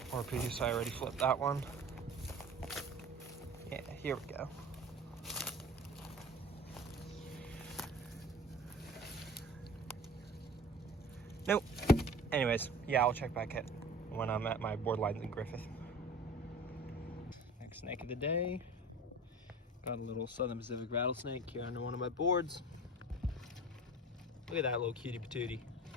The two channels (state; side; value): normal; both; correlation 0.40